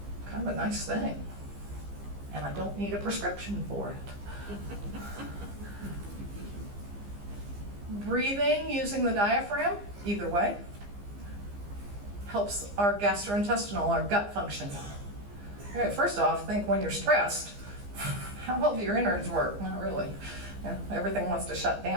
Kind of a nice thing. And I don't need a prescription for it. Breathing using the diaphragm, either way, helps our gastrointestinal, our gut function. All right, first off, think when you're stressed, how well do your innards work? Not really. Everything wants to shut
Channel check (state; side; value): late; left; 15 ms